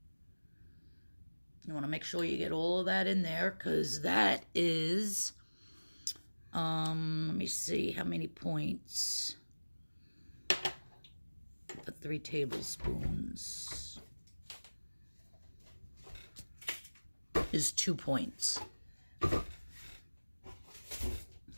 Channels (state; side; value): inverted; both; correlation -1.00